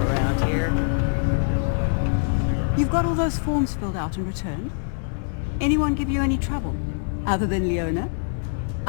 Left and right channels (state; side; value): silent; right; digital silence